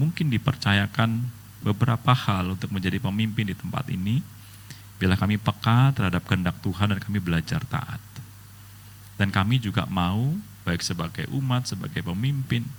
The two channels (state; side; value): identical; both; correlation 1.00